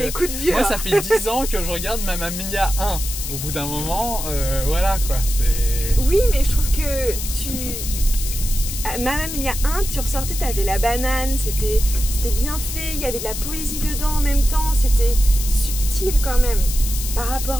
coups de vieux. Moi ça fait 10 ans que je regarde Mamma Mia 1. Au bout d'un moment, voilà quoi, c'est... Oui mais je trouve que Mamma Mia 1, tu ressortais, t'avais la banane, c'était bien fait, il y avait de la poésie dedans en même temps, c'était subtil quand même par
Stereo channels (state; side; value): noise; left; hiss, 6 dB below the sound